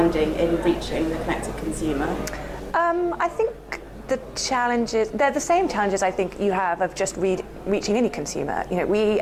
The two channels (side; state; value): both; identical; correlation 1.00